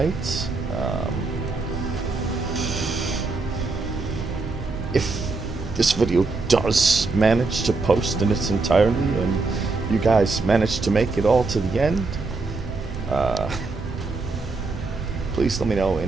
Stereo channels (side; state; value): left; quieter; 3.8 dB